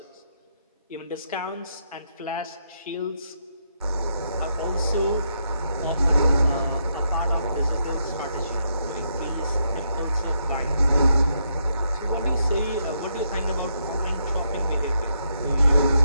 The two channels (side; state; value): both; inverted; correlation -0.78